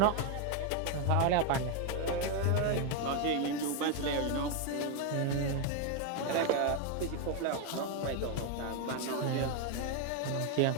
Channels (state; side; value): different; both; correlation 0.01